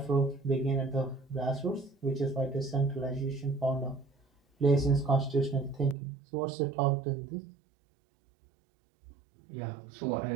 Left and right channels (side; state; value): left; drops out; at 6.0 s